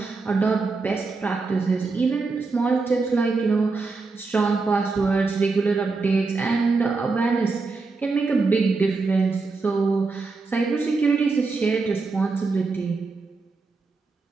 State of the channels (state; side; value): quieter; left; 4.1 dB